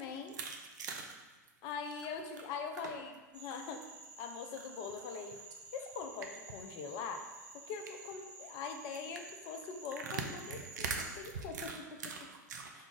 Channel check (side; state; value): both; normal; correlation 0.09